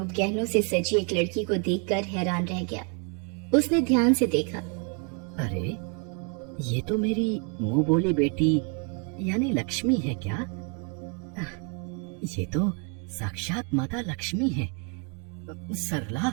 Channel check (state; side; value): quieter; left; 38.3 dB